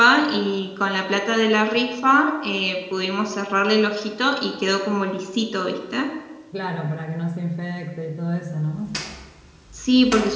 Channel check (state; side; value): identical; both; correlation 1.00